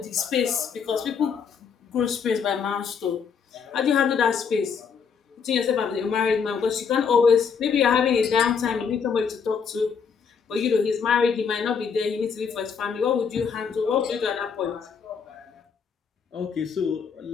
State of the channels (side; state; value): right; quieter; 6.4 dB